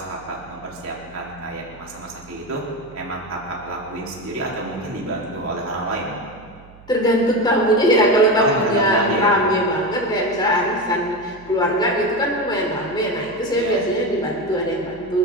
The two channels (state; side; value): noise; right; hum, 22 dB below the sound